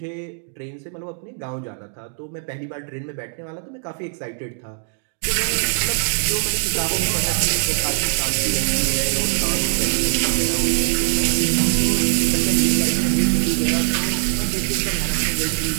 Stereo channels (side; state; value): left; silent; digital silence